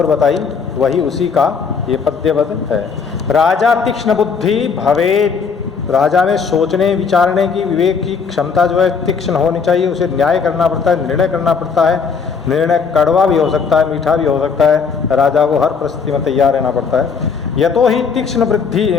बताई वही उसी का ये पद्यवत है। राजा तीक्ष्ण बुद्धि भवेत्, राजा में सोचने विचारने की विवेक की क्षमता जो है तीक्ष्ण होनी चाहिए। उसे न्याय करना पड़ता है, निर्णय करना पड़ता है। निर्णय कड़वा भी हो सकता है, मीठा भी हो सकता है। राजा को हर परिस्थिति में तैयार रहना पड़ता है। यतो ही तीक्ष्ण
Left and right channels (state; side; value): quieter; right; 5.7 dB